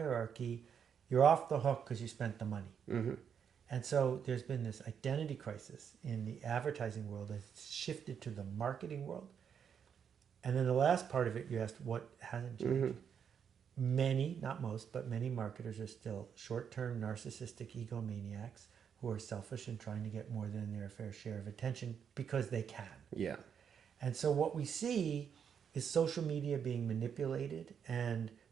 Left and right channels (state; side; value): quieter; left; 7.6 dB